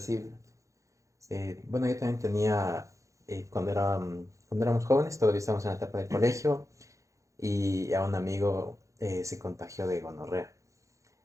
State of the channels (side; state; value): left; late; 0.15 ms